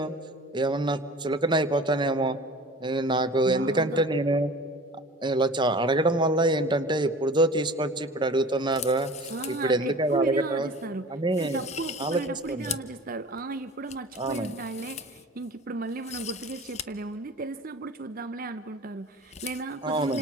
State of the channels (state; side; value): normal; both; correlation 0.41